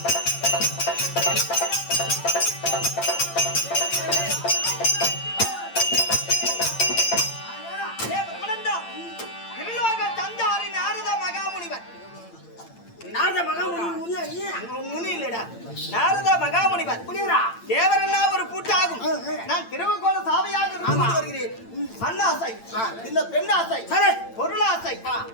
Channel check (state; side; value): late; right; 8.8 ms